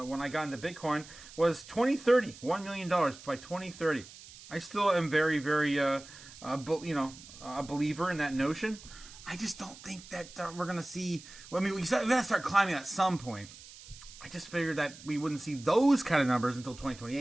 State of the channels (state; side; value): noise; right; hiss, 18 dB below the sound